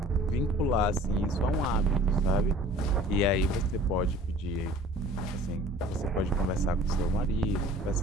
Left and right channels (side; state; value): both; normal; correlation 0.48